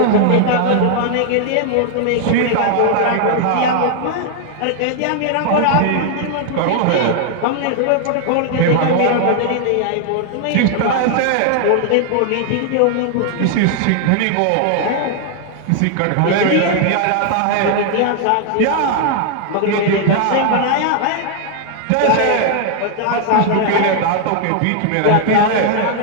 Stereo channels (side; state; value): both; different; correlation 0.00